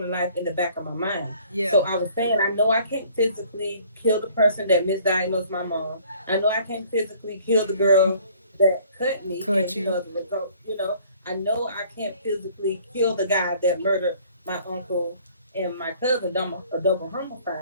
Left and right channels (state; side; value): inverted; both; correlation -0.56